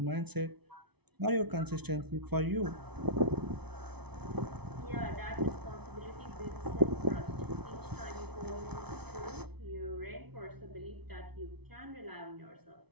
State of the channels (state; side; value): late; left; 0.99 ms